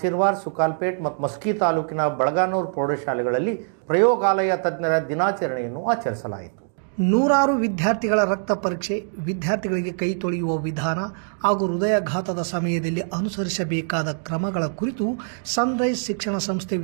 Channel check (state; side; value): silent; left; 63 dB below the other